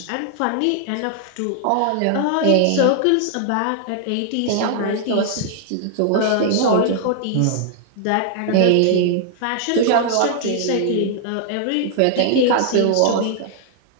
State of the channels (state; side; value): different; both; correlation -0.01